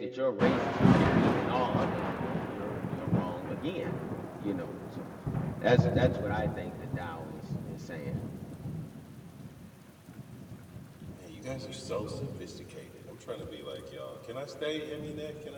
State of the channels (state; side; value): identical; both; correlation 1.00